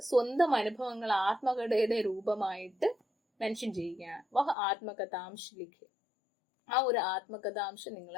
സ്വന്തം അനുഭവങ്ങൾ ആത്മകഥയുടെ രൂപമായിട്ട് മെൻഷൻ ചെയ്യുകയാണ്. വഹ ആത്മകഥാംശ ലിഖേ, ആ ഒരു ആത്മകഥാംശം നിങ്ങൾ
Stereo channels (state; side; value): drops out; right; at 4.5 s